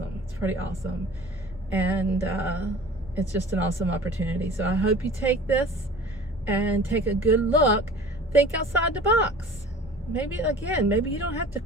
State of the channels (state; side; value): normal; both; correlation 0.43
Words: It's pretty awesome, and it's just an awesome opportunity. So I hope you take this and take a good look. Think outside the box. Maybe you don't have to